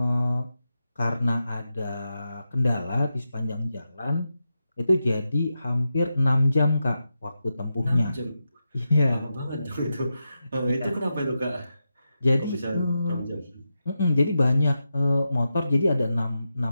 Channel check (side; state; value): both; inverted; correlation -0.88